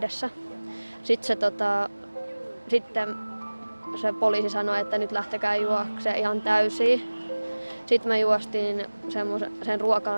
Sitten se poliisi sanoi, että nyt lähtekää juoksemaan ihan täysiin. Sitten me juostiin sen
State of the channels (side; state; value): both; inverted; correlation -1.00